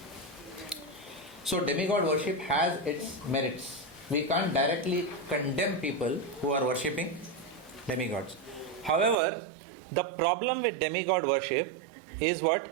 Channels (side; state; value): left; drops out; at 9.2 s